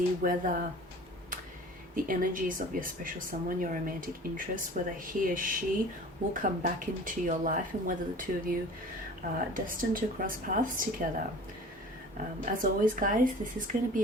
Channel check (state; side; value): normal; both; correlation 0.43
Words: whether the energies of your special someone, your romantic interest, whether he or she will come back into your life, and whether the two of you are destined to cross paths together. As always, guys, this is going to be